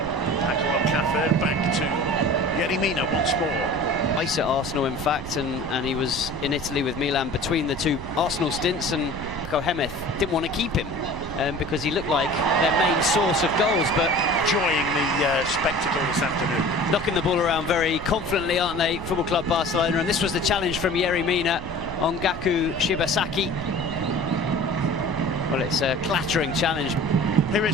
Paco Alcácer. Back to Yerry Mina once more. Ice at Arsenal, in fact, and he was in Italy with Milan between the two Arsenal stints, and Paco Gémez didn't want to keep him because he looked like their main source of goals, but enjoying the spectacle this afternoon. Knocking the ball around very confidently, aren't they, Football Club Barcelona? And this was the challenge from Yerry Mina on Gaku Shibasaki. Well, it's a clattering challenge. Here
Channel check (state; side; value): noise; right; rumble, 12 dB below the sound